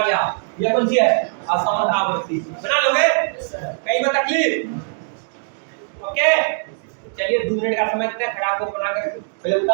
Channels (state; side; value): silent; left; digital silence